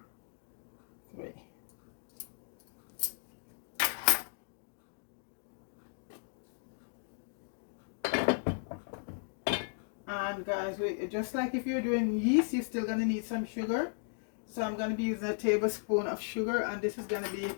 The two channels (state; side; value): silent; right; digital silence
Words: 3. And guys, just like if you're doing yeast, you're still gonna need some sugar. So I'm gonna be using a tablespoon of sugar, and this is gonna be